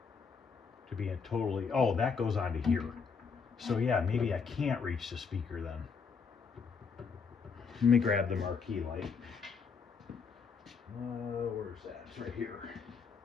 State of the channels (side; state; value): right; quieter; 5.6 dB